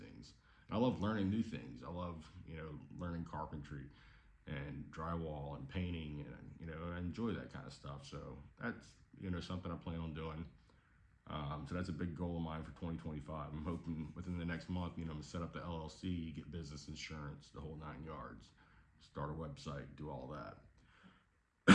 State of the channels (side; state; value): both; identical; correlation 1.00